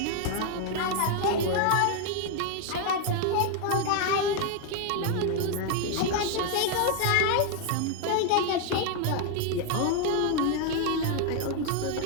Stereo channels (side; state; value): both; different; correlation 0.01